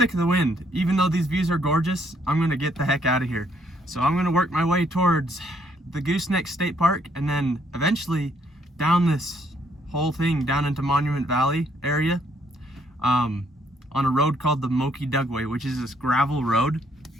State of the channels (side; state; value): both; normal; correlation 0.69